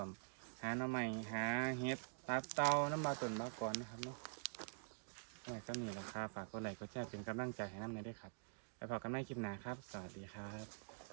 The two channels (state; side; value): silent; left; digital silence